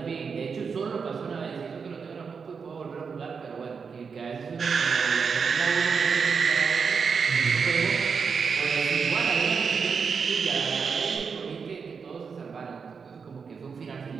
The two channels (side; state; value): left; quieter; 5.7 dB